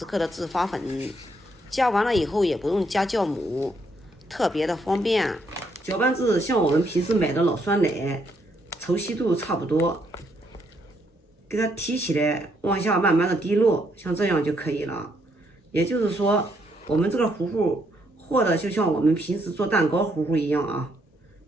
克的制发粉，加完了以后也不用加酵母，特别的方便。搅拌至像我们平时买的老酸奶，稠稀度差不多，给它提起来，往下慢慢的滴落，像这样就可以了。也就是说，我们这个糊糊和的就像我们平时做蛋糕糊糊一样啊，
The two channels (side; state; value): both; normal; correlation 0.73